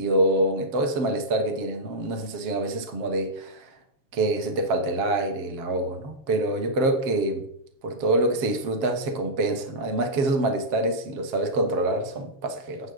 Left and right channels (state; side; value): late; left; 7.4 ms